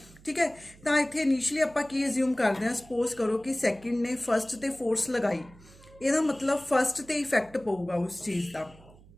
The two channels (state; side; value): noise; right; hum, 24 dB below the sound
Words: ठीक है। तो इतने इनिशली आप एज्यूम करते हैं सपोज करो कि सैकेंड ने फस्ट ते फोर्स लगाई, यदा मतलब फस्ट ते इफेक्ट पऊगा उस चीज़ का।